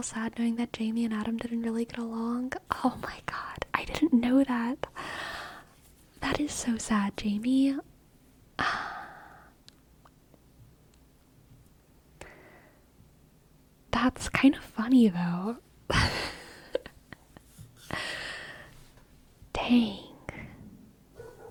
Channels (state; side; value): identical; both; correlation 1.00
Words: sad knowing that Jamie and Adam didn't really get along. Oh my god, I didn't know that. That is so sad, Jamie. That's kind of funny, though. Dang.